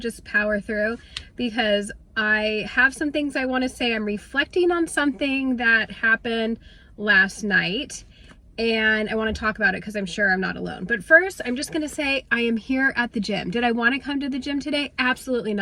power through because I have some things I want to say. I'm reflecting on something that happened last night and I want to talk about it because I'm sure I'm not alone. But first, I'm just gonna say I am here at the gym. Did I want to come to the gym today? Absolutely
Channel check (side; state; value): both; identical; correlation 1.00